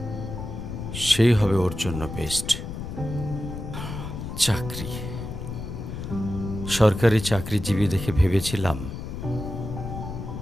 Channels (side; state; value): left; noise; rumble, 7 dB below the sound